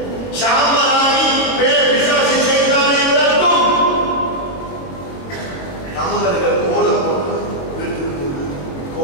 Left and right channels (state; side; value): late; right; 22 ms